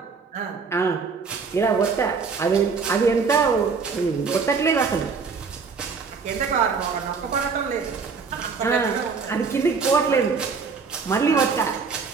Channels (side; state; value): left; quieter; 5.1 dB